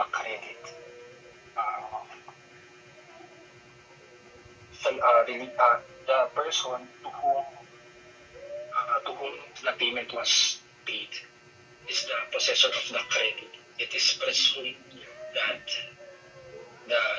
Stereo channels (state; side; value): identical; both; correlation 1.00